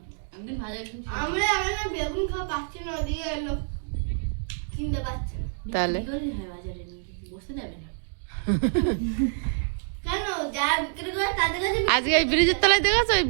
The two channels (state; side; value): silent; left; digital silence